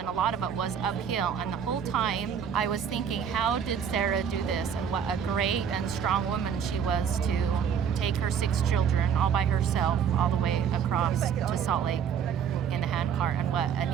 a lot of it was uphill. And the whole time I was thinking, how did Sarah do this? And what a great and strong woman she was to take her 6 children all by herself all the way across to Salt Lake in the handcart. And what a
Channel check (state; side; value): quieter; left; 7.7 dB